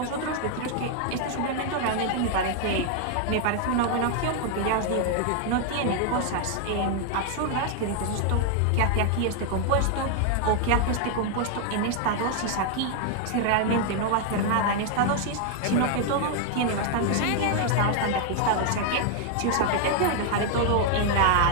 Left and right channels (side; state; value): both; different; correlation 0.00